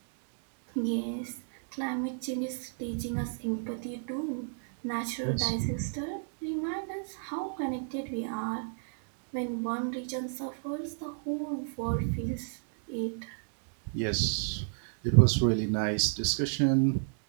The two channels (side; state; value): left; silent; digital silence